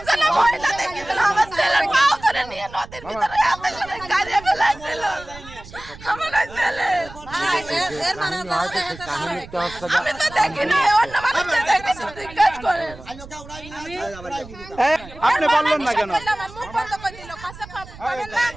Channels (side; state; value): right; noise; rumble, 17 dB below the sound